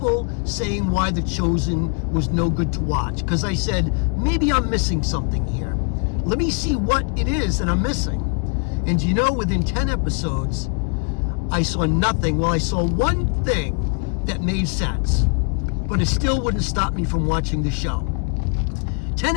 saying why The Chosen was no good to watch. Because I said, maybe I'm missing something here. Let me see what it is that I'm missing. And you know, within 10 episodes, I saw nothing. Well, I saw one thing that made sense, but it still wouldn't stop me from watching the show. 10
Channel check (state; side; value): quieter; right; 37.8 dB